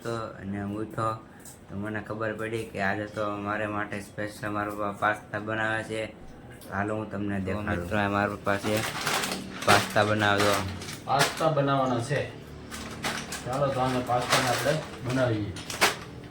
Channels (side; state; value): both; identical; correlation 1.00